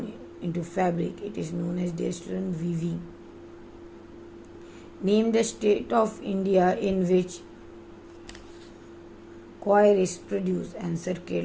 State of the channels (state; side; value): identical; both; correlation 1.00